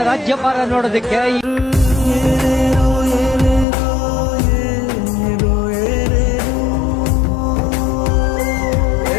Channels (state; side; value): drops out; right; at 3.7 s